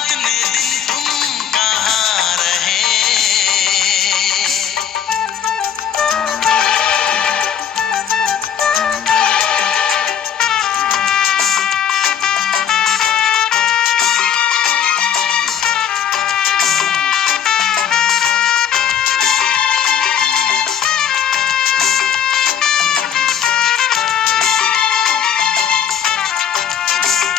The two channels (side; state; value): right; quieter; 8.7 dB